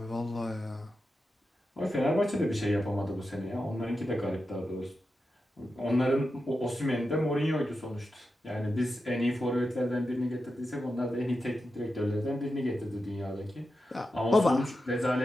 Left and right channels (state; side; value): normal; both; correlation 0.90